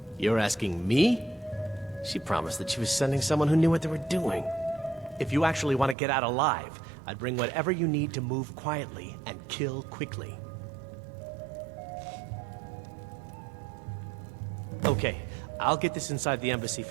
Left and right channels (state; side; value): drops out; left; at 6.0 s